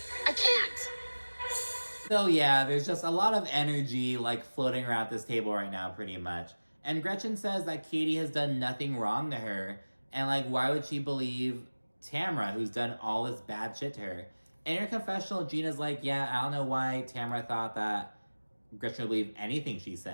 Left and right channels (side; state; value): both; inverted; correlation -1.00